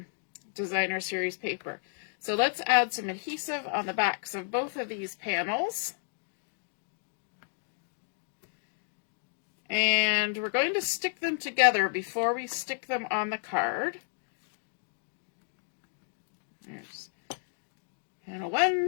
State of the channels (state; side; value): silent; right; digital silence